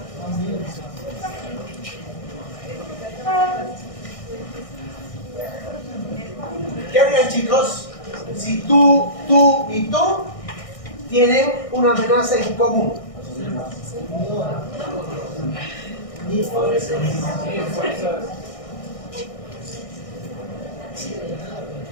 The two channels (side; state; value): right; late; 1.6 ms